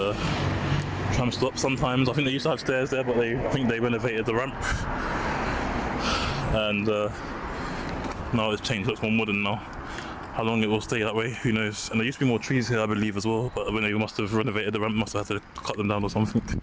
tram stop sometimes. I think they used to have stairs there, but I think they renovated the ramp. And now it's changed, looks more modern now. How long it will stay that way, who knows. And there used to be more trees here, I believe, as well, but when they must have renovated the ramp, must have had to cut them down or something.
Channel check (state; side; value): identical; both; correlation 1.00